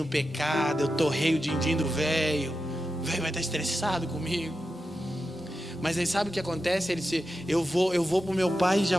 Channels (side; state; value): both; normal; correlation 0.90